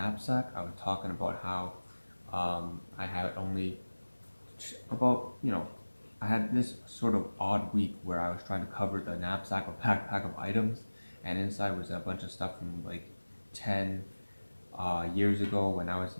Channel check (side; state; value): both; inverted; correlation -1.00